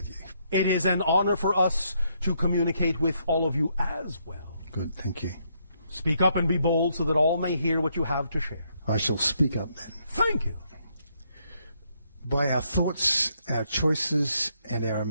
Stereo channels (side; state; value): both; inverted; correlation -0.74